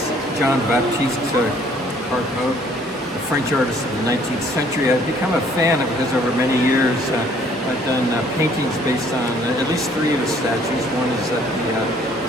Jean-Baptiste Carpeaux, the French artist of the 19th century. I've become a fan of his over many years. I've done paintings based on at least three of his statues. One is at the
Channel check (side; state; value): both; normal; correlation 0.60